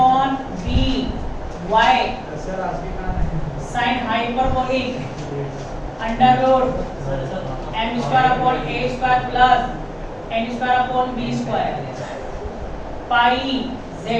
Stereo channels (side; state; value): both; identical; correlation 1.00